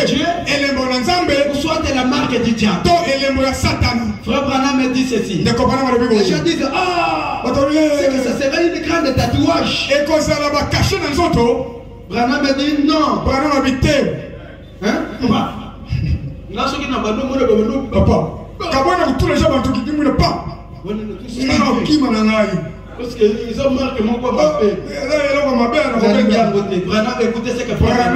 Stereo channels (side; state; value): both; identical; correlation 1.00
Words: Dieu, ou soit la marque du diable. Frère Branham me dit ceci. Les gens disent, c'est que ça serait une grande tatouage. Branham me dit non. Parce qu'ils ont marqué mon papa. Écoutez ce que